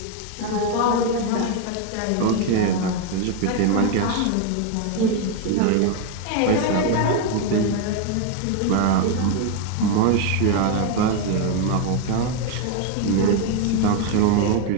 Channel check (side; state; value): both; different; correlation 0.01